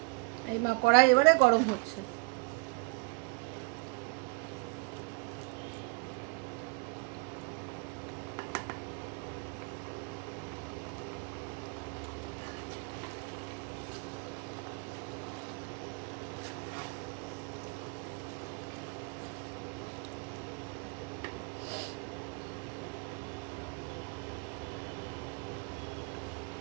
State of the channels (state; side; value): quieter; left; 30.5 dB